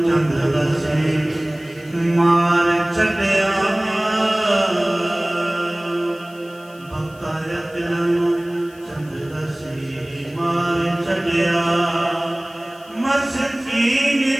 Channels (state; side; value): noise; left; hiss, 26 dB below the sound